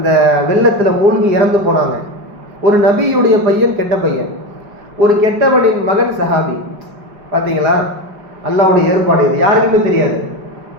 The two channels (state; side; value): late; left; 5.4 ms